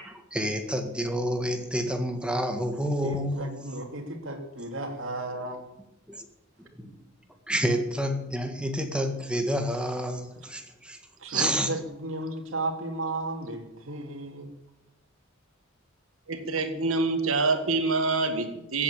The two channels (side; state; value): both; normal; correlation 0.27